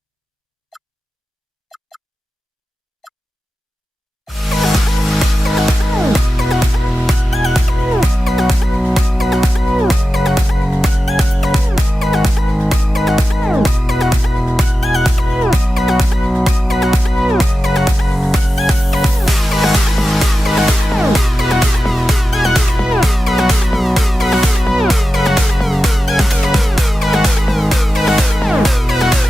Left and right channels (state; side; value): normal; both; correlation 0.93